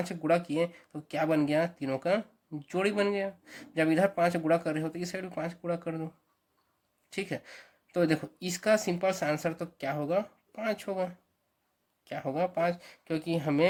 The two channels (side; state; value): both; identical; correlation 1.00